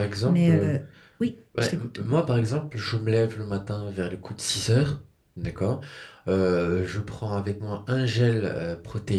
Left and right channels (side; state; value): both; identical; correlation 1.00